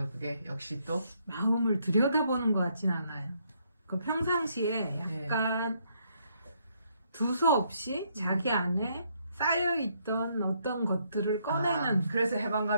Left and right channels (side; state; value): both; inverted; correlation -0.72